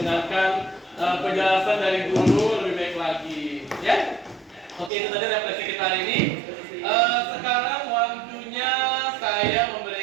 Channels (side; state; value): left; drops out; at 4.9 s